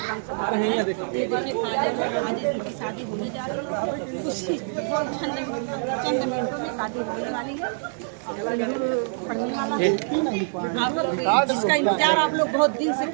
सभा रहे हैं। देखिए आज इनकी शादी होने जा रही है, कुछ चंद मिनटों में शादी होने वाली है और सिंदूर पड़ने वाला है। आप लोग जिसका इंतजार आप लोग बहुत दिन से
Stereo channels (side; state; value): left; silent; 56 dB below the other